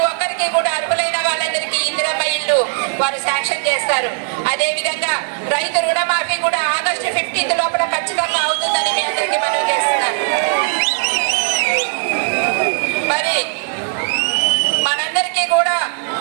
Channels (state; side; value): silent; left; 67 dB below the other